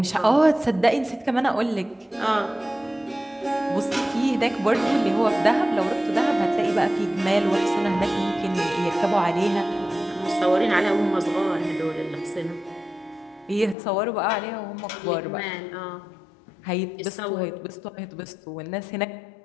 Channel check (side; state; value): right; drops out; at 13.8 s